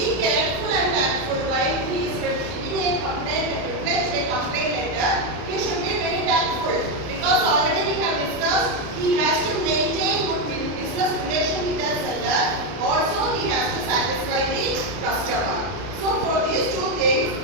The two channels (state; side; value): late; left; 33 ms